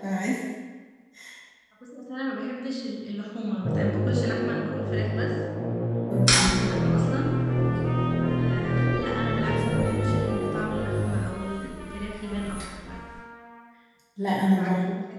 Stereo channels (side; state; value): both; identical; correlation 1.00